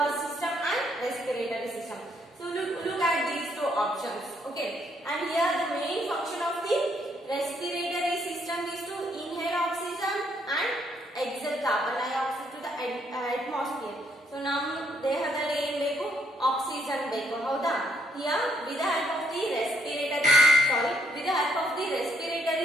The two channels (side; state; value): both; normal; correlation 0.71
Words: system and respiratory system. So look at these two options. Okay, and here the main function of the respiratory system is to inhale oxygen and exhale carbon dioxide to the atmosphere. So ನಮ್ಮ ದೇಹದಲ್ಲಿ ಏನು ಬೇಕು? Oxygen ಬೇಕು. ಹೌದಾ? Here with the help of the